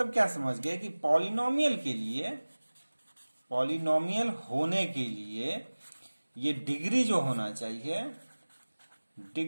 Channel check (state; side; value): inverted; both; correlation -1.00